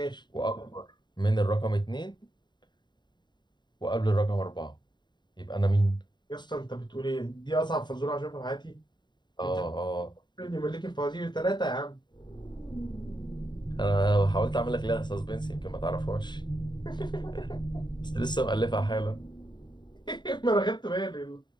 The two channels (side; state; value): right; late; 0.22 ms